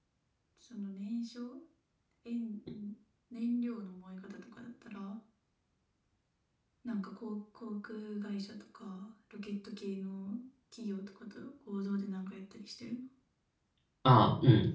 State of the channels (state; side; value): identical; both; correlation 1.00